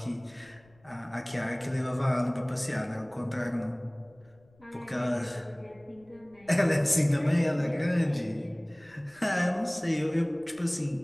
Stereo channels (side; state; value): left; noise; rumble, 30 dB below the sound